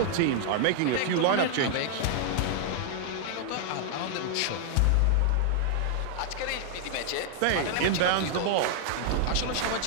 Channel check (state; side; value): different; both; correlation 0.00